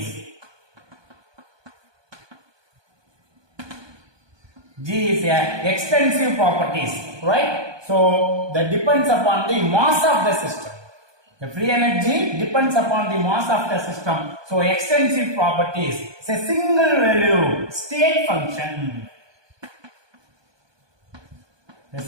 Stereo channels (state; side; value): late; left; 1.2 ms